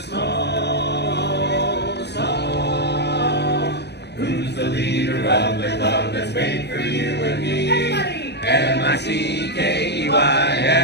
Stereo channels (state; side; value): late; right; 0.49 ms